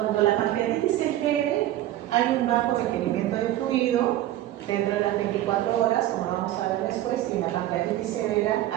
la pancreatitis es leve, hay un bajo requerimiento de fluido dentro de las 24 horas, como vamos a ver después, y en la pancreatitis severa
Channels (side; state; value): left; quieter; 14.0 dB